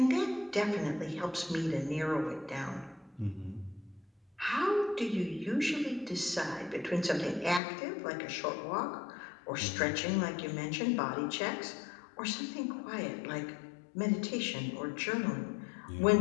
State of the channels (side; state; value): right; drops out; at 7.6 s